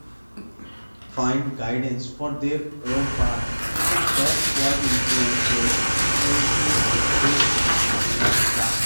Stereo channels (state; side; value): inverted; both; correlation -1.00